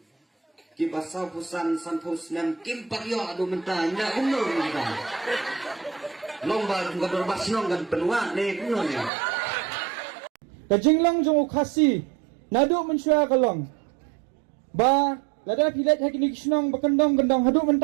khi bắt sau pusan san pusnem kim paryo adu mentah nggak umur kita lomba nggak berbat senong kan penuh nih penuh nih. Kajinglang jong ukasi naduk mensyua kalong ba lada pilet hakini kisnong bakendong-gendong haduk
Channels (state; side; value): drops out; left; at 9.1 s